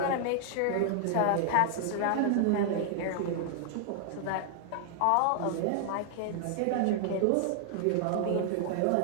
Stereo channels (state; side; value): different; both; correlation 0.00